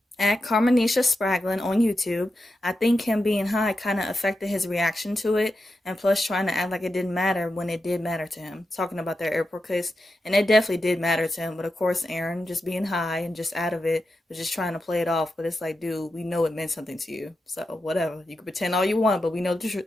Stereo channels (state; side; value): normal; both; correlation 0.89